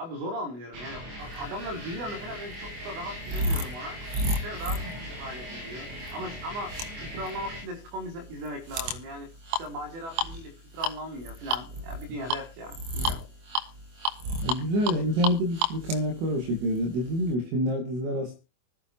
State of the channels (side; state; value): left; late; 24 ms